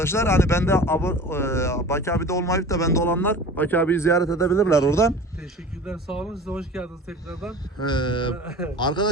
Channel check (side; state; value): both; normal; correlation 0.39